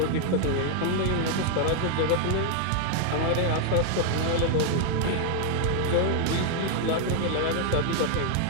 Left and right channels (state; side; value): different; both; correlation 0.00